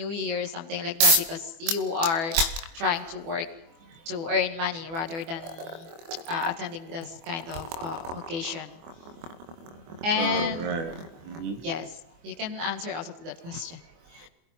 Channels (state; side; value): late; left; 24 ms